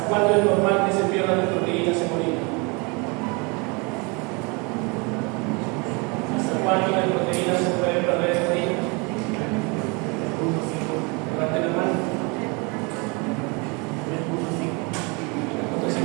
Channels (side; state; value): left; quieter; 29.8 dB